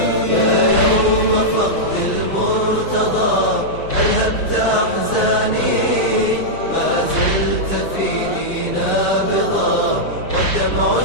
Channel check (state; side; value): late; right; 5.6 ms